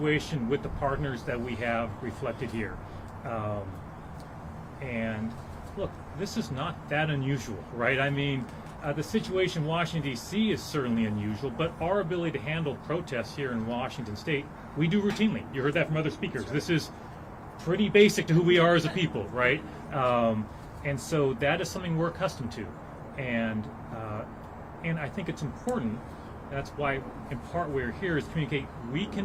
with the partners that we have reflected here. And look, this is not that unusual, right? I mean, the situation in Washington, D.C. is certainly unusual, but our ability to handle protests here in Washington State, we do routinely. You heard that from other speakers. This is pretty basic to who we are as a people, right? And so that is something we're accustomed to. And I think it's important. That's why, in part, we're here is to communicate we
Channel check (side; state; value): both; identical; correlation 1.00